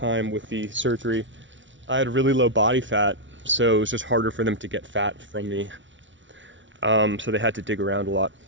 with the surgery. I had really low body fat, so it was just harder for them to get fat from me. So they had to dig around a lot.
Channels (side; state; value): left; late; 0.55 ms